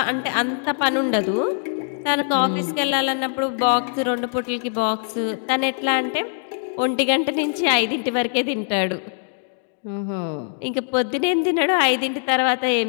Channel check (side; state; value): right; silent; digital silence